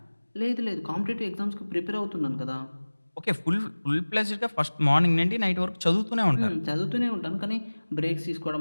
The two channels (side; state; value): both; inverted; correlation -1.00